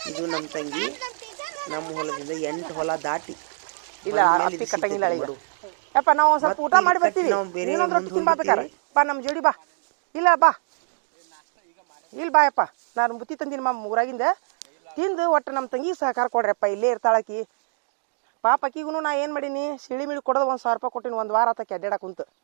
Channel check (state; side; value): silent; left; digital silence